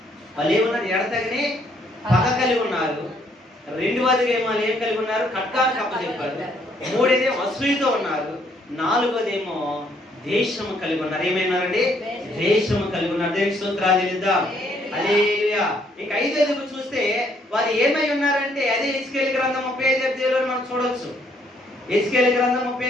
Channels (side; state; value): both; normal; correlation 0.68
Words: వాళ్ళు ఏమన్నారు? ఎడతగని పగ కలిగి ఉన్నారు. రెండవదిగేమో వాళ్ళు ఏం కలిగి ఉన్నారు? ఖడ్గాన్ని కప్పచెప్పారు. మూడేదేమో అసూయతో ఉన్నారు. నాలుగోదేమో దేశము కలిగి ఉన్నారు. ఏమైనారండి? దేశము కలిగి ఉన్నారు. దేవునికి స్తోత్రాలు చెల్లిద్దాం. హల్లెలూయా. ఇంకా ఐదోది చూస్తే వారు ఏమై ఉన్నారంటే అదే హెజ్కేలు గ్రంథం 35వ అధ్యాయంలో మనం చూడొచ్చు. హెజ్కేలు గ్రంథం